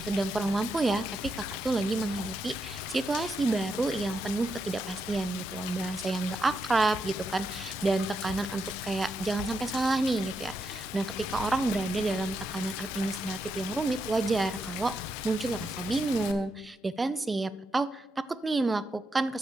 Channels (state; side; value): normal; both; correlation 0.83